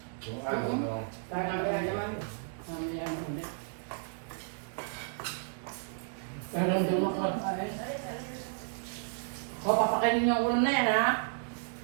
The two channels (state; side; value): silent; left; 56 dB below the other